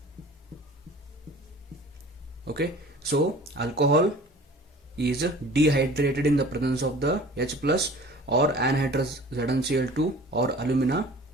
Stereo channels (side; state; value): both; normal; correlation 0.45